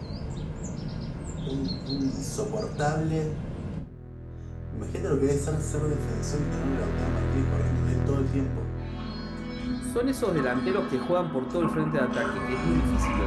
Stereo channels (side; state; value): both; identical; correlation 1.00